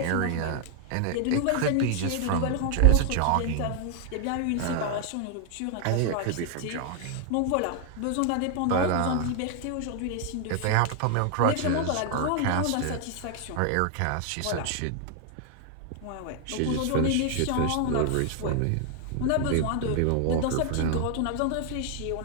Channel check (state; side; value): different; both; correlation 0.00